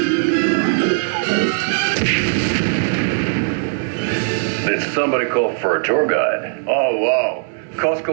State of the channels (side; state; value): left; silent; 67 dB below the other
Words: Tour guide. Oh, wow.